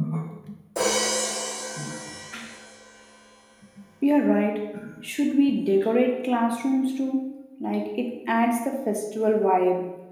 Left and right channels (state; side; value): identical; both; correlation 1.00